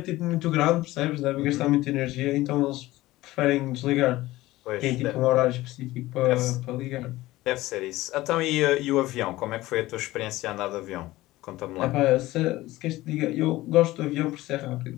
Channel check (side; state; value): right; quieter; 17.7 dB